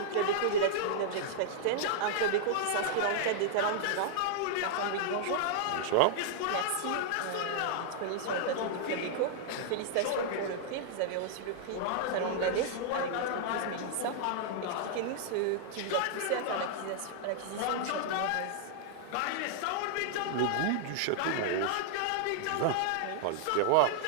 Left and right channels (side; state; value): both; different; correlation -0.01